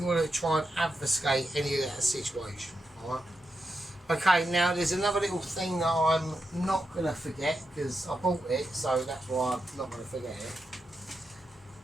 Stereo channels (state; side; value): normal; both; correlation 0.87